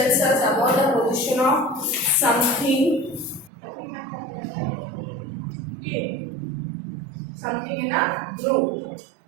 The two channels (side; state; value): left; drops out; at 3.5 s